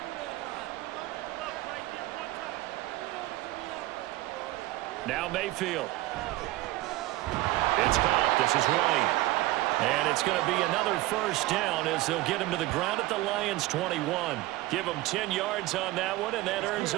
Now Mayfield. It's caught. This is White. And it's going to be another first down as they'll get him to the ground at the Lions' 21. Give him 10 yards on that one, and that earns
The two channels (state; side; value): quieter; left; 17.8 dB